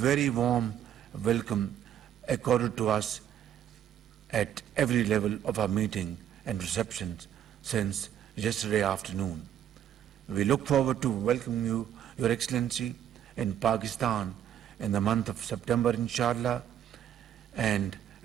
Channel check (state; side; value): quieter; left; 10.3 dB